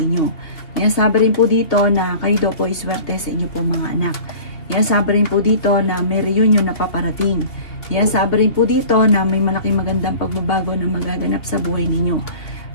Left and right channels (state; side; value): late; right; 2.8 ms